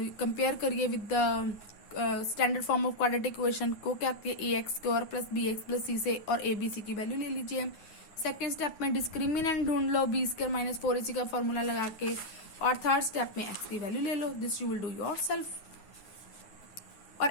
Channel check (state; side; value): late; right; 9.5 ms